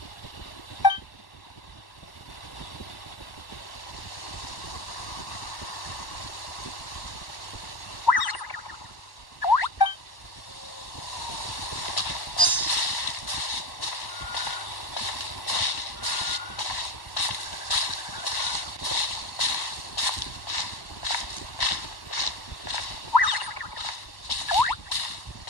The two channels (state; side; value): late; right; 1.1 ms